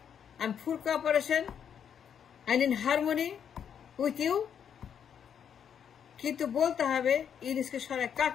আমি full cooperation, I in harmony with you. কিন্তু বলতে হবে ইউনূসকে সরায়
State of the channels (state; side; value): quieter; right; 8.2 dB